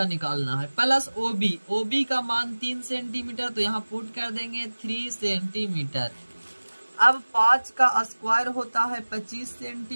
निकालना है, प्लस OB का मान 3 सेंटीमीटर तो यहाँ पुट कर देंगे 3 सेंटीमीटर। अब 5 का स्क्वायर होता है 25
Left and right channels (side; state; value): both; inverted; correlation -1.00